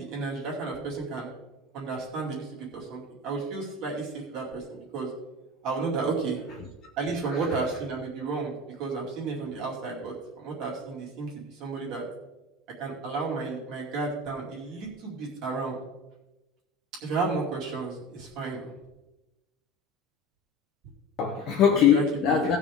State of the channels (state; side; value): normal; both; correlation 0.33